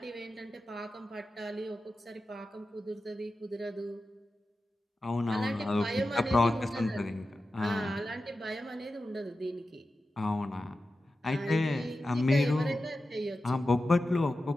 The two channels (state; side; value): normal; both; correlation 0.93